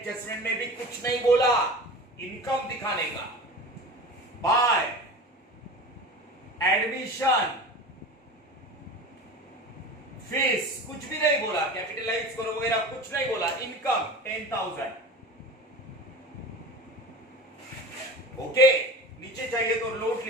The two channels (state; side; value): normal; both; correlation 0.34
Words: में भी कुछ नहीं बोला, इनकम दिखाने का। बाय एडमिशन फीस कुछ भी नहीं बोला, कैपिटलाइज करो वगैरह कुछ नहीं बोला। इनकम 10,000। ओके, नीचे चाहिए तो नोट